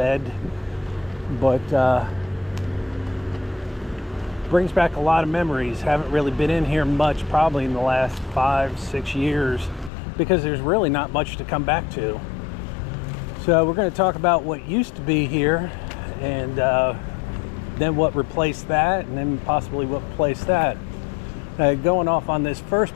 but brings back a lot of memories. Haven't really been in here much probably in the last 5-6 years because there's really not much to come back to. So we're going to talk about what used to be here and then what replaced that, and then possibly what replaced that. Going off on this first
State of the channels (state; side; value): drops out; right; at 9.9 s